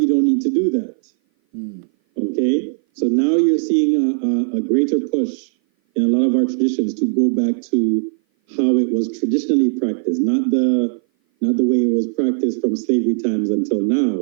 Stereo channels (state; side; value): silent; left; 57 dB below the other